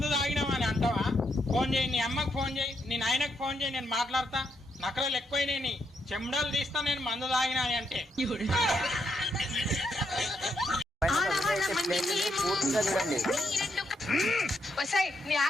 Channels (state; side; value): normal; both; correlation 0.78